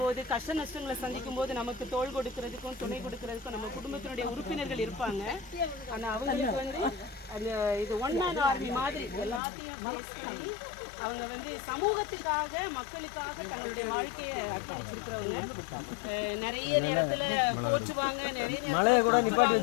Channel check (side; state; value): right; drops out; at 9.4 s